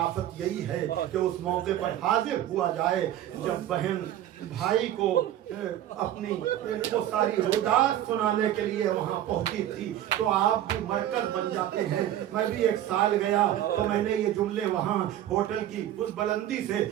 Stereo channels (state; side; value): quieter; left; 12.2 dB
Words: یہی ہے کہ اس موقع پر حاضر ہوا جائے جب بہن بھائی کو اپنی وہ ساری رودات سنانے کے لیے وہاں پہنچی تھی تو آپ بھی مرکز بن جاتے ہیں۔ میں بھی 1 سال گیا تو میں نے یہ جملے وہاں ہوٹل کی اس بلندی سے